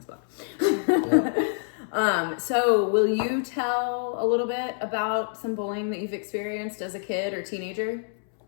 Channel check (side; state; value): right; silent; 61 dB below the other